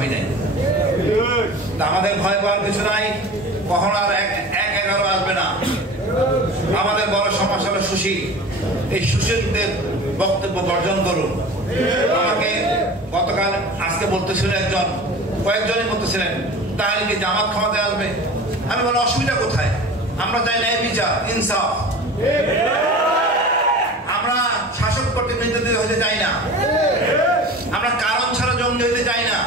নাই, আমাদের ভয় পাওয়ার কিছু নাই। কখনো আর 1-11 আসবে না। আমাদের বড় সমস্যা হলো সুশীল, এই সুশীলদের বক্তব্য বর্জন করুন। আমাকে গতকাল, আজকে বলতেছিলেন একজন, কয়েকজনই বলতেছিলেন তাহলে কি জামাত ক্ষমতায় আসবে? আমি বলি অসুবিধা কোথায়? আমরা চাই ন্যায় বিচার, ইনসাফ। আমরা শাসক প্রতিনিধিত্ব হতে চাই না, আমরা কারণ ছাড়া জঙ্গি হতে চাই না।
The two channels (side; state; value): both; normal; correlation 0.37